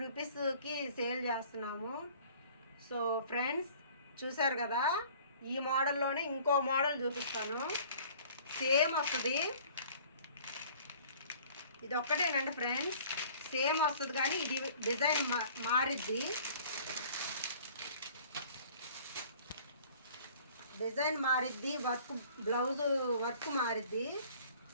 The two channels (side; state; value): both; inverted; correlation -0.51